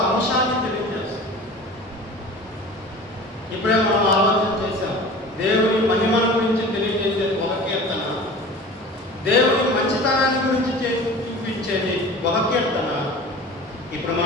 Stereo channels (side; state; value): both; normal; correlation 0.39